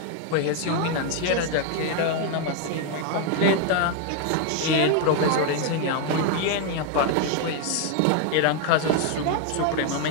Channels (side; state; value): both; different; correlation 0.01